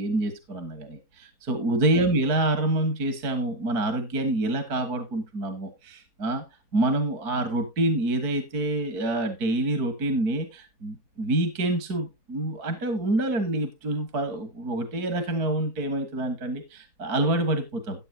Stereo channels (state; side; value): late; left; 4.5 ms